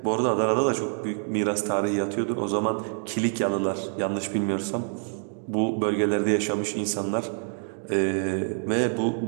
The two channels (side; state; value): left; silent; 61 dB below the other